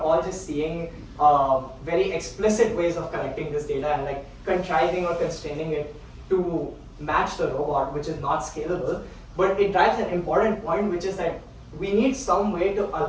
all just seeing very explicit ways of collecting this data and like contriving or constraining it to match the robot, which is not scalable. But it drives an important point, which is that we need some way to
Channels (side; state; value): both; identical; correlation 1.00